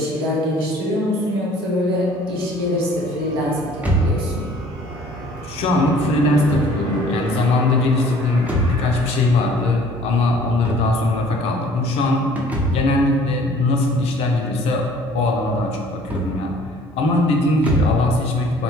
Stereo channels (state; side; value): normal; both; correlation 0.53